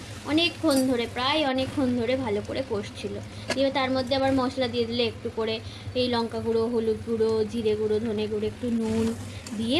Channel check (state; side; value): identical; both; correlation 1.00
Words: প্রায় অনেকক্ষণ ধরে ভালো করে কষছিল। দিয়ে তার মধ্যে আবার মশলা দিয়ে দিলে একটু করে, এই লঙ্কা গুঁড়ো, হলুদ গুঁড়ো, জিরে গুঁড়ো, ধনে গুঁড়ো, একটু নুন দিয়ে